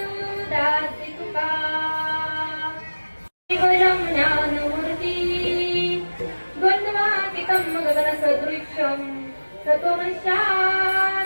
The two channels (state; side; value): inverted; both; correlation -1.00